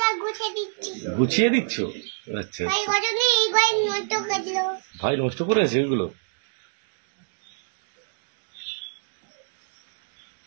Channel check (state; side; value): silent; left; digital silence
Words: গুছিয়ে দিচ্ছ? আচ্ছা ভাই নষ্ট করেছে ওইগুলো?